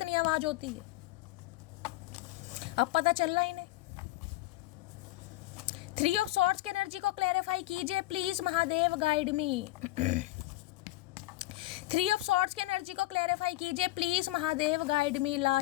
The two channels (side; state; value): right; quieter; 17.8 dB